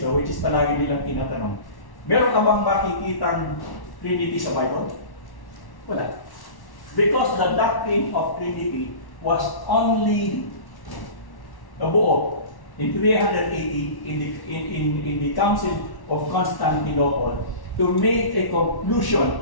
which is palagi nilang tinatanong, meron ka bang makikitang Trinity sa Bible? Wala. Because the doctrine of Trinity was only nabuo in 380 in the Council of Constantinople to make a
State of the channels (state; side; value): late; right; 1.1 ms